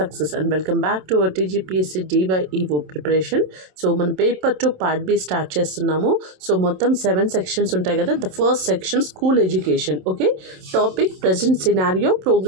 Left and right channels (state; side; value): late; left; 27 ms